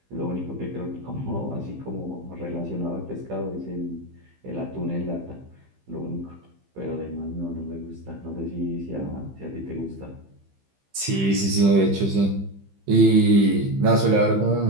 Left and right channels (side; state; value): left; late; 15 ms